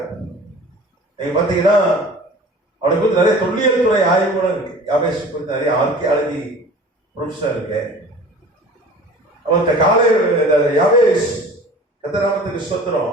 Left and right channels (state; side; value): normal; both; correlation 0.43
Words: நீங்க பாத்தீங்கன்னா அவனை குறித்து நிறைய தொல்லியல் துறை ஆய்வுகளும் இருக்கு. யாவேஸ் குறித்து நிறைய ஆர்கியாலஜி ப்ரொஃபஸர் இருக்கு. அவன் காலை யாவேஸ் கர்த்தராமத்துக்கு ஸ்தோத்திரம்